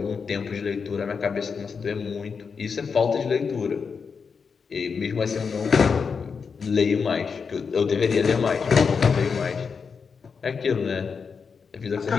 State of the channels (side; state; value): right; quieter; 5.7 dB